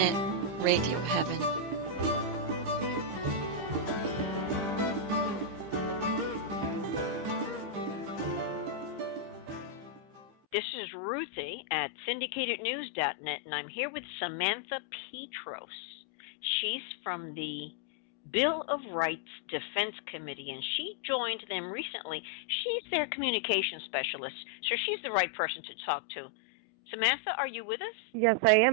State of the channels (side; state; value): left; late; 15 ms